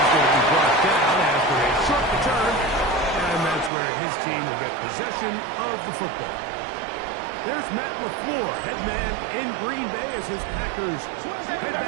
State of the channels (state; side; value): drops out; left; at 3.7 s